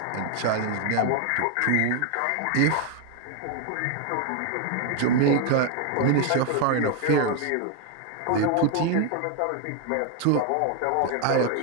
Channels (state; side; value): different; both; correlation 0.01